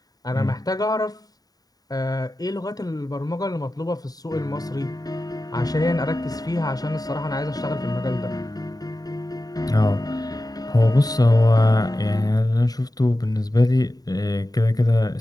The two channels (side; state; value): right; late; 0.18 ms